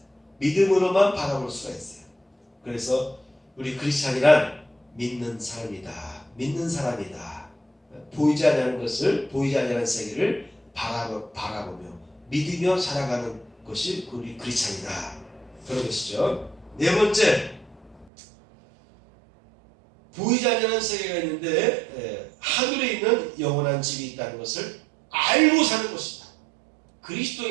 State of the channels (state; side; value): drops out; left; at 18.1 s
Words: 믿음으로만 바라볼 수가 있어요. 그래서 우리 크리스찬이란 믿는 사람이다. 믿는 사람이다. 보이지 않는 것을, 보이지 않는 세계를 바라보며 믿으며 살아가는 것이 우리 크리스찬이다. 그런 것이죠. 네 번째, 보이지 않는 세계가 있는데 하늘에 있는 영원한 집이 있다는 것을 알고 사는 것이다.